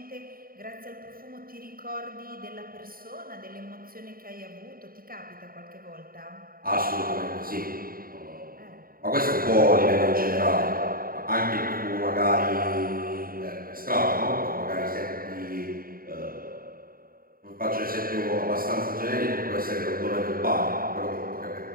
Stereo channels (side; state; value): left; late; 0.42 ms